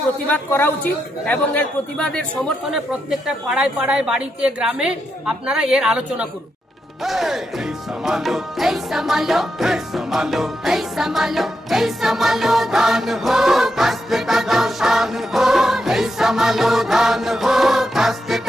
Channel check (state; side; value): normal; both; correlation 0.84